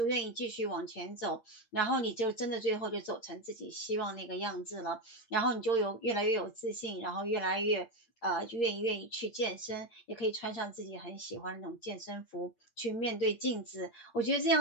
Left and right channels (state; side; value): late; right; 8.8 ms